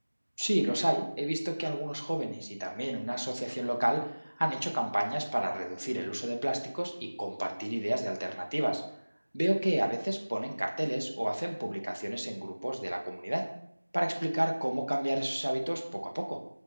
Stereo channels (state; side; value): inverted; both; correlation -1.00